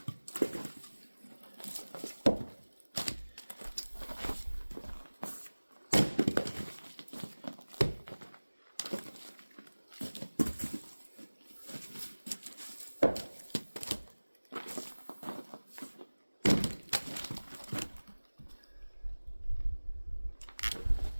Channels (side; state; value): both; inverted; correlation -1.00